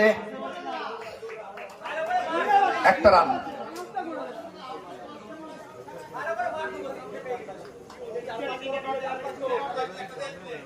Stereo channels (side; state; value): both; identical; correlation 1.00